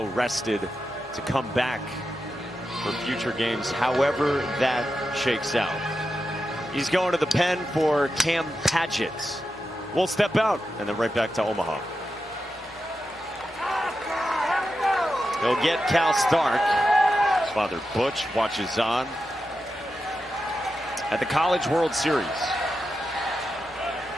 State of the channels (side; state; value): both; normal; correlation 0.89